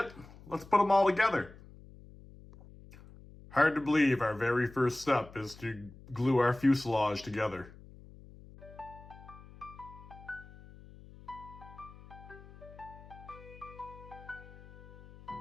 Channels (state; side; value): noise; left; hum, 19 dB below the sound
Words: let's put them all together. Hard to believe our very first step is to glue our fuselage together.